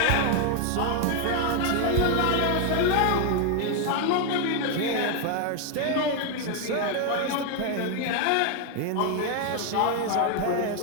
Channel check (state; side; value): different; both; correlation 0.01